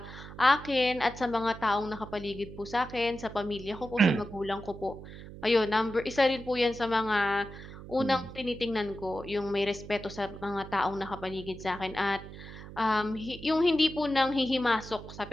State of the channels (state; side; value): noise; right; hum, 14 dB below the sound